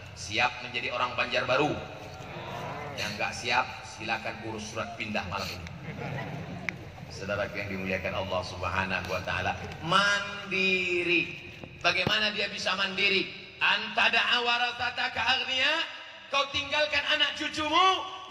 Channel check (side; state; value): both; identical; correlation 1.00